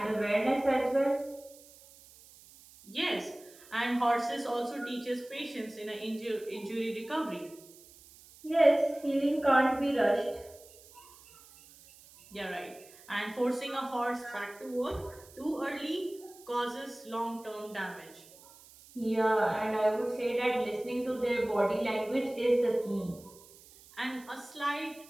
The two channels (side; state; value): right; noise; hiss, 22 dB below the sound